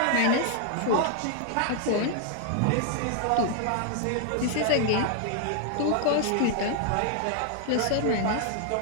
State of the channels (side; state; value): both; different; correlation 0.00